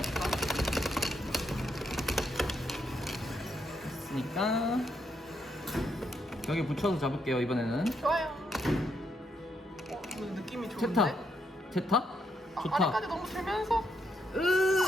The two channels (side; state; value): both; normal; correlation 0.77